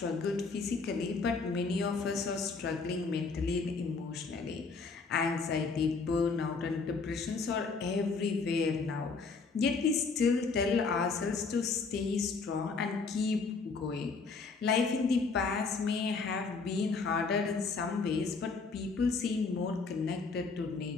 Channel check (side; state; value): right; quieter; 4.5 dB